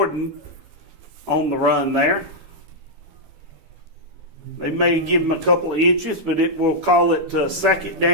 on the run there. They may give him a couple of inches, but we'll call it second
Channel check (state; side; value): late; left; 12 ms